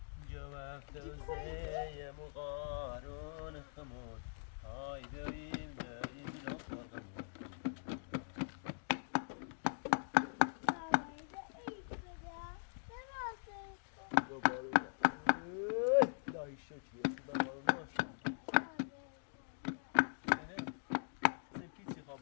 جواب توزيع مغارون خمود هاي دايم الأصفر لا يشوتي سبكيتي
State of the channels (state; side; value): silent; right; digital silence